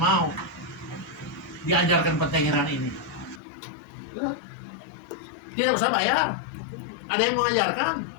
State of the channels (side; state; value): right; drops out; at 3.4 s